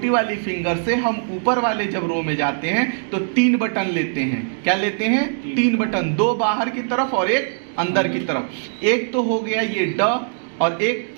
वाली फिंगर से हम ऊपर वाले जब रो में जाते हैं तो 3 बटन लेते हैं। क्या लेते हैं? 3 बटन, 2 बाहर की तरफ और एक अंदर की तरफ। एक तो हो गया ये ड और एक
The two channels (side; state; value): left; silent; digital silence